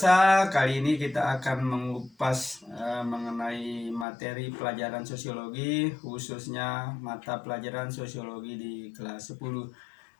kali ini kita akan mengupas mengenai materi pelajaran sosiologi, khususnya mata pelajaran sosiologi di kelas 10.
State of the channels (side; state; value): right; drops out; at 4.0 s